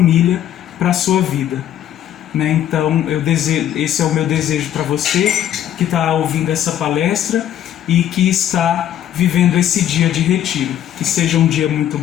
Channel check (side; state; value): right; quieter; 11.0 dB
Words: para a sua vida, né? Então, esse é o meu desejo para você que está ouvindo essa palestra e que está vivendo esse dia de retiro. Que seja um dia muito